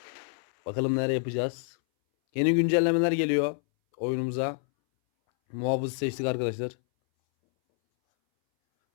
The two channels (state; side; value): silent; right; 60 dB below the other